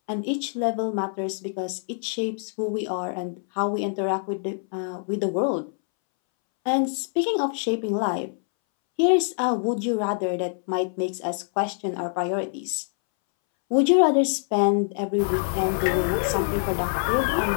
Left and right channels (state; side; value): silent; right; 62 dB below the other